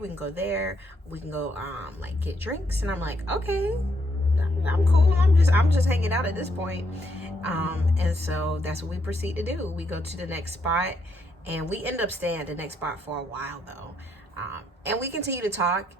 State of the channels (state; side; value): normal; both; correlation 0.76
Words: can go there, we can go like get drinks. And I'm like, okay, I'm cool. I'm just hanging out at this point. And so that's what we proceed to do. We go to the next spot and we end up staying at the next spot for a while though. And we continue to talk.